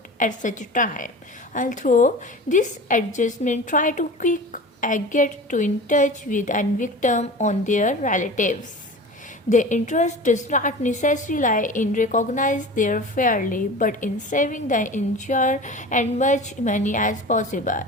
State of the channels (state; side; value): normal; both; correlation 0.35